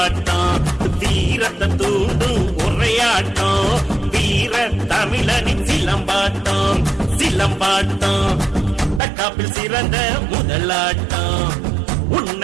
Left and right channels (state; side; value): drops out; left; at 9.0 s